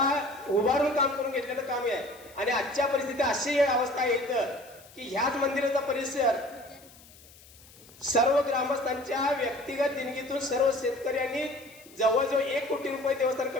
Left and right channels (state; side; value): noise; left; hiss, 23 dB below the sound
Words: उभारून काम करून घेतलेलं काम आहे. आणि आजच्या परिस्थितीत अशी अवस्था येतं की ह्याच मंदिराचा परिसर सर्व ग्रामस्थांच्या व्यक्तिगत देणगीतून सर्व शेतकऱ्यांनी जवळजवळ 1 कोटी रुपये देवस्थान